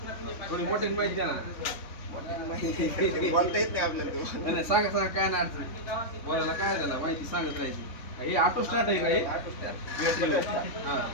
थोडी मोठी माहिती द्या ना. माहिती बोलता येत नाही आपल्याला तो. नाही नाही, सांगा सांगा, काय नाही अडचण. बोलायला काय झालं, माहिती सांगत राहायची. हे ऑटो स्टार्ट आहे का हे? ऑटो स्टार्ट बॅटरीवर. हां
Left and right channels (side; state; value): right; late; 3.6 ms